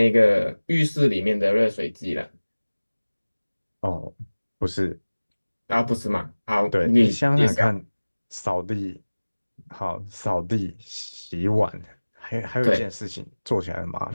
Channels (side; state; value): both; inverted; correlation -1.00